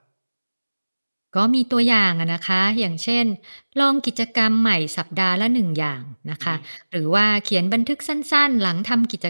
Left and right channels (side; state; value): both; inverted; correlation -1.00